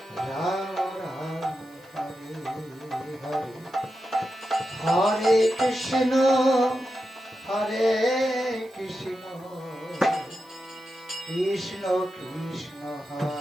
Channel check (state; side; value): noise; right; hiss, 28 dB below the sound